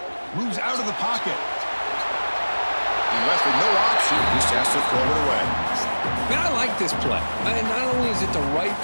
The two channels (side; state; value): both; inverted; correlation -1.00